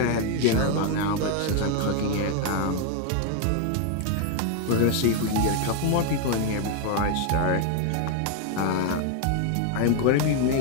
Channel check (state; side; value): different; both; correlation 0.01